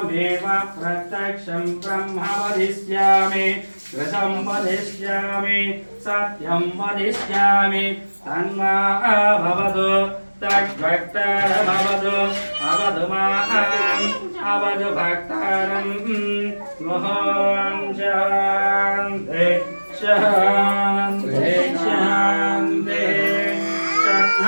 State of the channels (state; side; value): inverted; both; correlation -1.00